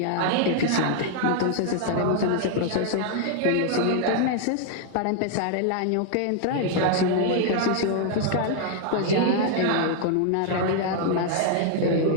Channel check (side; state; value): both; different; correlation 0.00